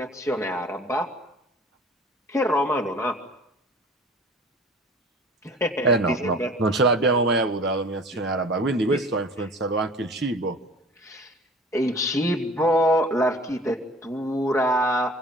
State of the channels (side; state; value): both; normal; correlation 0.45